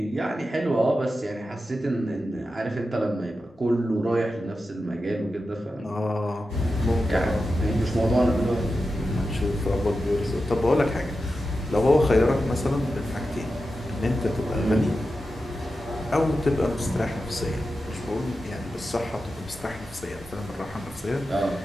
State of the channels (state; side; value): normal; both; correlation 0.91